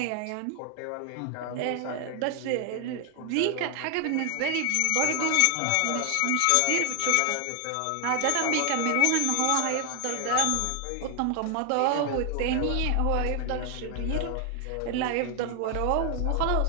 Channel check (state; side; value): different; both; correlation 0.00